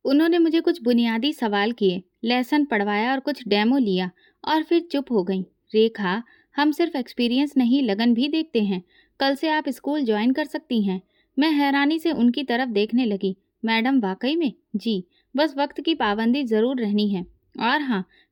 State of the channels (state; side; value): identical; both; correlation 1.00